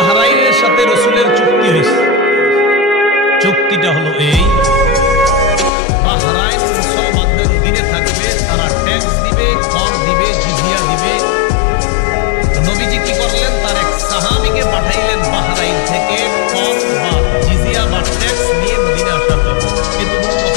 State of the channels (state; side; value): drops out; right; at 5.7 s